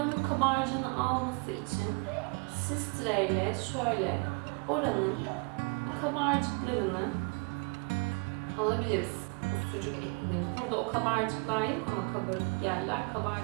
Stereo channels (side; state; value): left; quieter; 33.9 dB